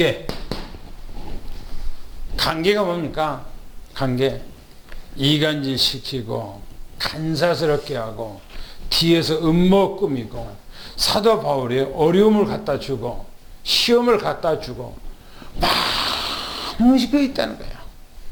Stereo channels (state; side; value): identical; both; correlation 1.00